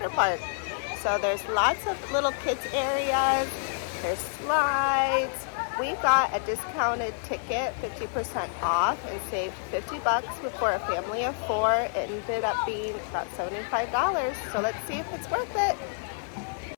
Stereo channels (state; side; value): silent; right; 59 dB below the other